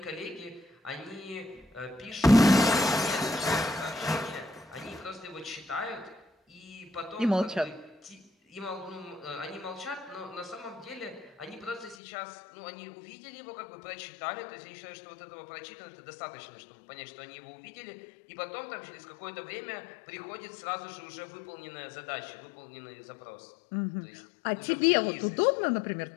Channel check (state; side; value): drops out; right; at 12.0 s